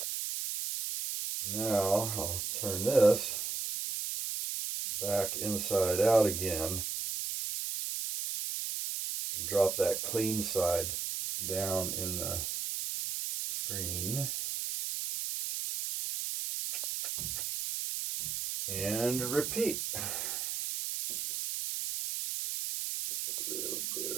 Now I'll turn this back inside out again and drop that clean side down in the screen. And repeat. A little bit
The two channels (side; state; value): right; noise; hiss, 3 dB below the sound